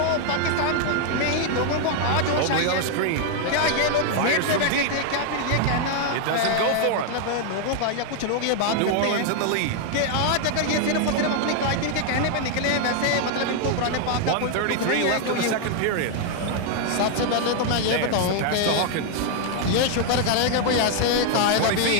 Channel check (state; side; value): different; both; correlation 0.00